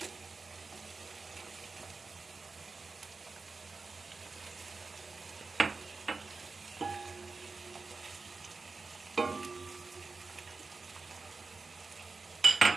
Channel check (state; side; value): quieter; left; 4.1 dB